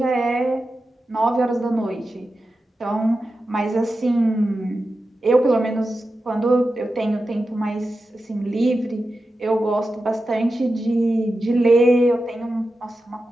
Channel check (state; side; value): normal; both; correlation 0.91